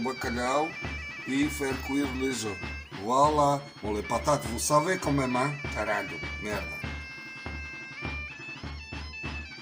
et faire cuire les œufs. Voilà. Bon, les patates, vous savez quand même, hein? Caralho, merda.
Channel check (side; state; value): both; identical; correlation 1.00